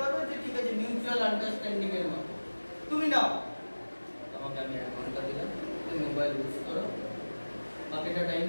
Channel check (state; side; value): inverted; both; correlation -1.00